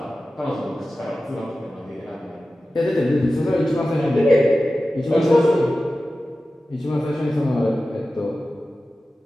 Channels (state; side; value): normal; both; correlation 0.95